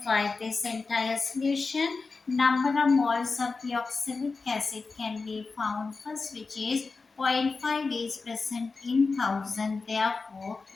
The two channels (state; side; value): quieter; right; 4.2 dB